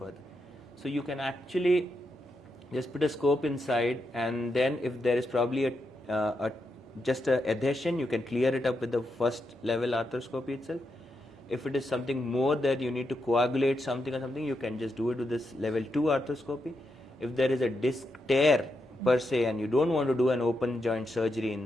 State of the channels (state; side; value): normal; both; correlation 0.84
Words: So you can actually just put a scope inside, and then if there is probably just a adhesion, you can clear it up with the first level arthroscopy itself. If it is something more that you need to coagulate something or something, you can just do it with this level 2 arthroscopy. If there is a disc tear per se and you don't want to do an open joint surgery in